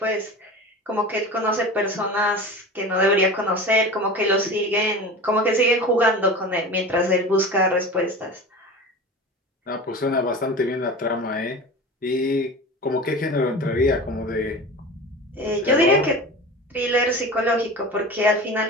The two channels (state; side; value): normal; both; correlation 0.33